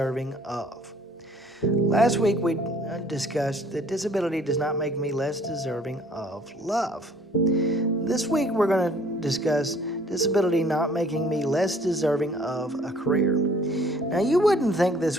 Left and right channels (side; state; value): both; normal; correlation 0.56